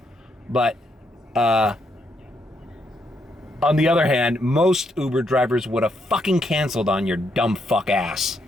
But, on the other hand, most Uber drivers would have fucking canceled on your dumb fuck ass.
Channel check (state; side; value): normal; both; correlation 0.77